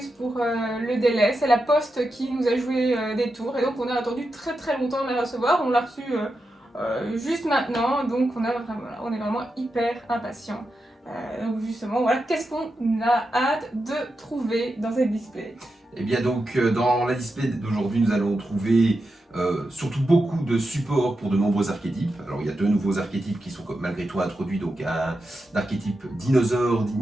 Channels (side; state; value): both; normal; correlation 0.88